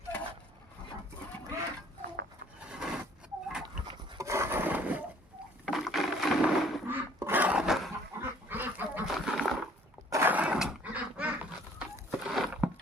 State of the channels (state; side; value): normal; both; correlation 0.57